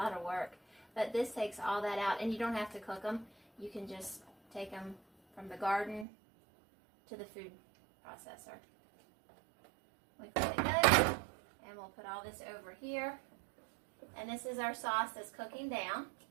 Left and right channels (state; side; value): drops out; left; at 6.1 s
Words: of work. But this takes all that out, and you don't have to cook them. You can just take them from the garden to the food processor. We clean it good, and we'll put all this over here. And this is our sauce that's cooking down.